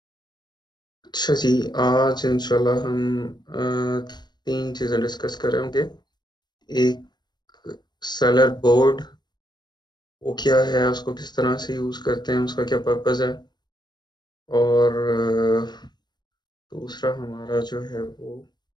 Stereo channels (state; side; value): late; right; 0.21 ms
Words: अच्छा जी, आज इंशाल्लाह हम तीन चीज़ें डिस्कस कर रहे होंगे। एक सेलर बोर्ड, वो क्या है, उसको किस तरह से यूज़ करते हैं, उसका क्या पर्पज़ है। और दूसरा हमारा जो है वो